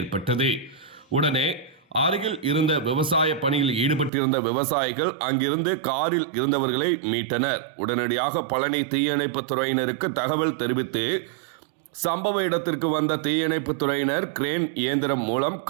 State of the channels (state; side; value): drops out; left; at 4.1 s